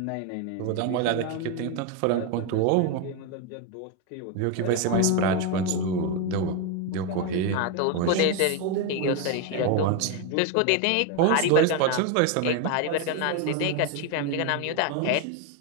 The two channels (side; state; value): both; different; correlation 0.02